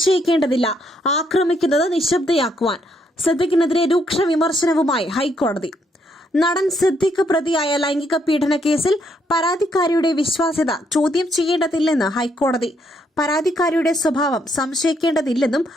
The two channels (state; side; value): normal; both; correlation 0.73